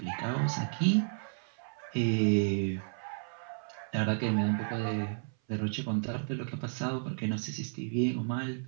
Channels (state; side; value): silent; left; 56 dB below the other